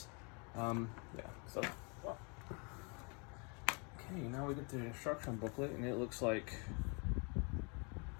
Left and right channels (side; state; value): right; quieter; 33.9 dB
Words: Yeah. So. Well. Okay, now we get the instruction booklet, and it looks like